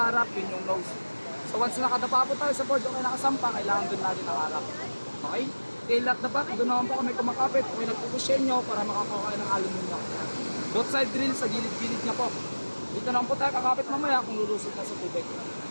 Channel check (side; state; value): both; inverted; correlation -1.00